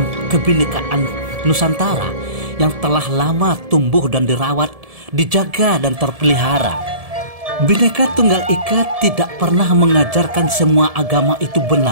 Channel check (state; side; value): late; left; 1.7 ms